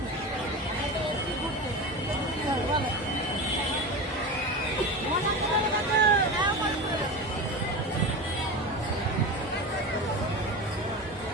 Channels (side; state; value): both; normal; correlation 0.26